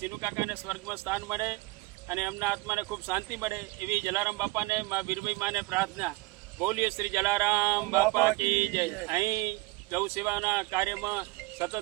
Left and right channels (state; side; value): quieter; left; 23.3 dB